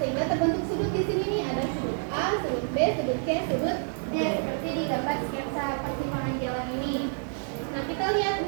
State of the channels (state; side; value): silent; left; 58 dB below the other